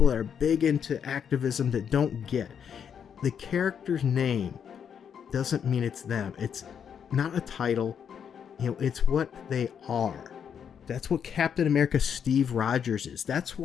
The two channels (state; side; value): quieter; right; 7.8 dB